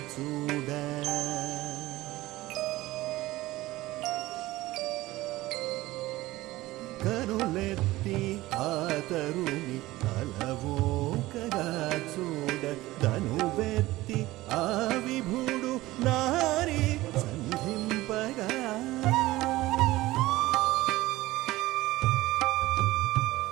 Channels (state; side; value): quieter; left; 18.0 dB